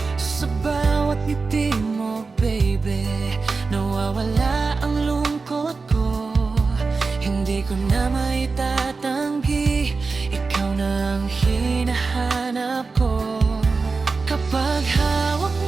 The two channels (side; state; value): left; quieter; 4.2 dB